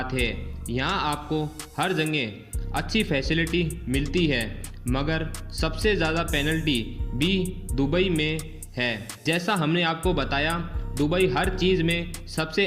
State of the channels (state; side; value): identical; both; correlation 1.00